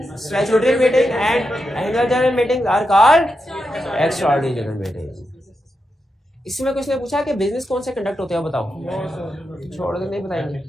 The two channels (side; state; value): both; normal; correlation 0.87